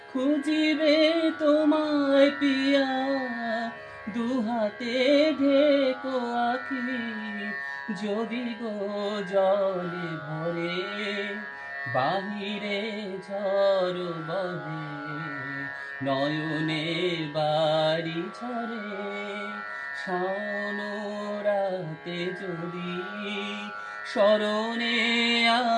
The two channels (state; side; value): identical; both; correlation 1.00